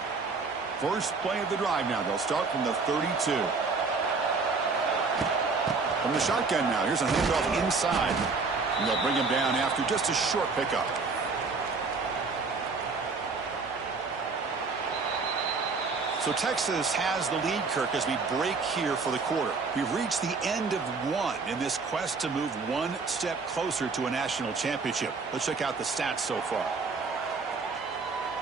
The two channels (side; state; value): left; quieter; 4.4 dB